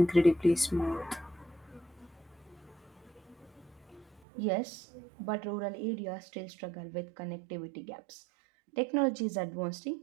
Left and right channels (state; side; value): drops out; left; at 4.2 s